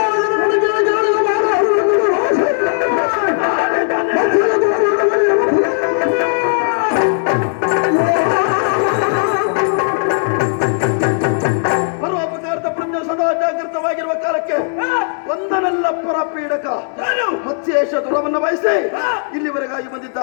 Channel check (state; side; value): silent; right; digital silence